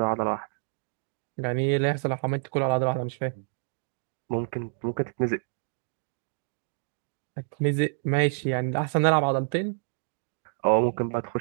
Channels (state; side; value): silent; left; digital silence